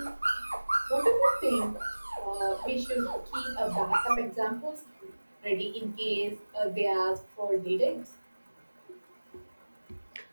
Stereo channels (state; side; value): inverted; both; correlation -1.00